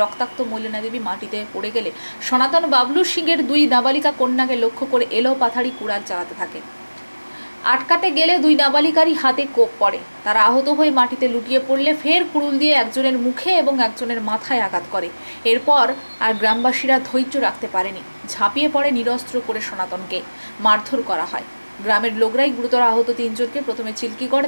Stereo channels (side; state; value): both; inverted; correlation -1.00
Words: রক্তাক্ত মলিনা দেবী মাটিতে পড়ে গেলে সনাতন বাবলু সিং এর দুই নাবালিকা কন্যাকে লক্ষ্য করে এলো পাথাড়ি কুড়াল চালাতে থাকে। আটকাতে গেলে দুই নাবালিকারই হাতে কোপ পড়ে। তারা আহত হয়ে মাটিতে লুটিয়ে পড়লে ফের কুড়ুল দিয়ে একজনের মুখে এবং একজনের মাথায় আঘাত করে। এরপর আর গ্রামবাসীরা ধৈর্য রাখতে পারেনি, ঝাঁপিয়ে পড়ে নিরস্ত্র করে সনাতনকে মারধর করা হয়। গ্রামের লোকরাই গুরুতর আহত তিনজনকে প্রথমে চিল্কিগড়,